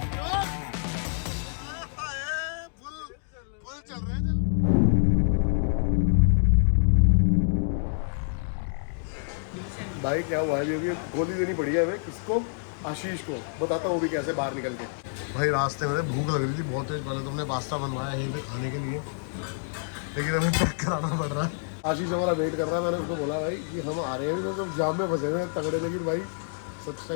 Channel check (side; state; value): right; silent; digital silence